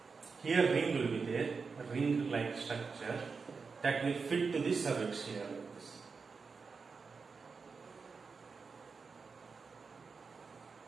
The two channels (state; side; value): quieter; left; 4.9 dB